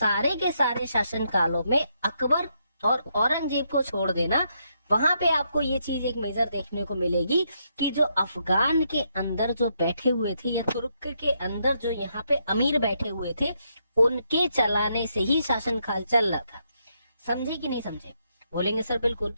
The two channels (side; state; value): both; inverted; correlation -0.78